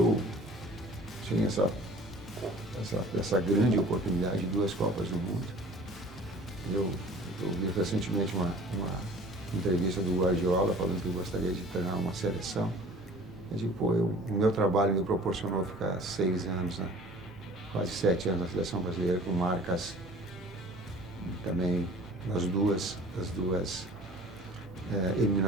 sem essa grande oportunidade de 2 Copas do Mundo. Eu vi recentemente uma entrevista do Guardiola falando que gostaria de treinar uma seleção. Eu digo, pô, o meu trabalho me proporcionou ficar 6 anos, né? Quase 7 anos na seleção brasileira, com marcas também nas duas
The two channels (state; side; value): normal; both; correlation 0.47